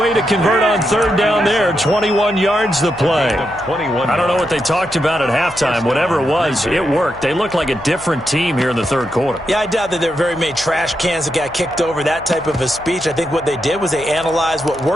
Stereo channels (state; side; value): noise; left; hum, 21 dB below the sound